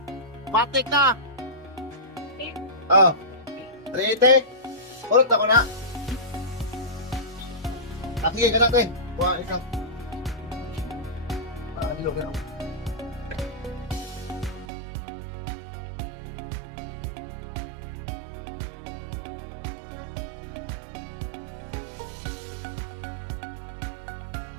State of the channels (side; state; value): left; drops out; at 14.7 s